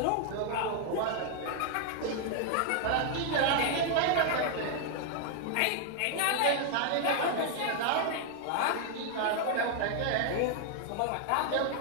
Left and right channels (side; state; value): both; different; correlation 0.00